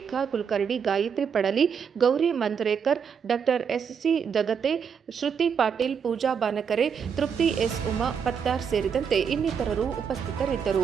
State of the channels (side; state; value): left; quieter; 6.9 dB